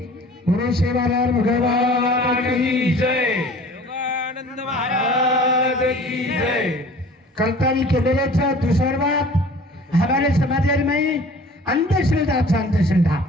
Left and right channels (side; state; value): both; normal; correlation 0.46